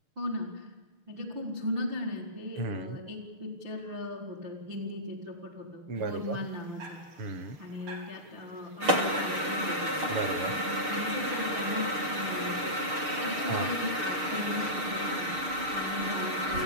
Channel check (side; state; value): left; late; 6.5 ms